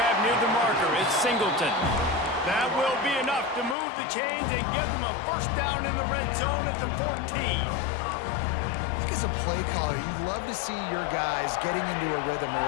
near the marker, it's Singleton. That will be enough to move the chains and give them a first down in the red zone at the 14. As a play caller, you love to see your guys getting into a rhythm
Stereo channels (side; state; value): right; drops out; at 3.8 s